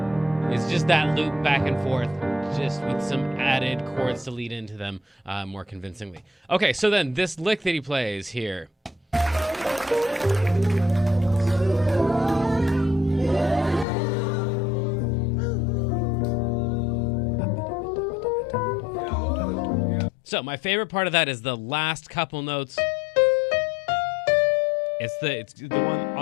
It's just that loop back and forth, just with some added chords to lead into them more convincingly. Okay, so then this lick that he plays here. So my favorite part of that is the last couple notes. It's the one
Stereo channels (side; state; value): right; drops out; at 13.9 s